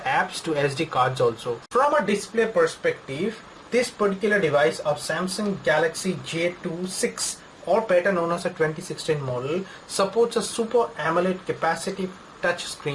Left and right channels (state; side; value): identical; both; correlation 1.00